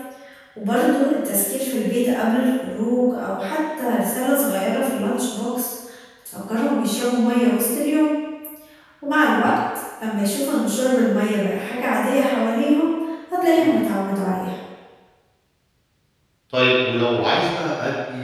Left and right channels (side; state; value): both; identical; correlation 1.00